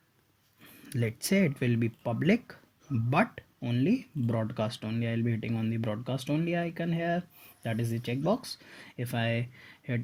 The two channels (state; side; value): identical; both; correlation 1.00